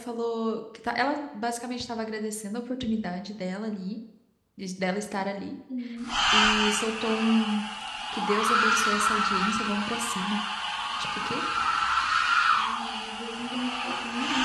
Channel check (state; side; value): identical; both; correlation 1.00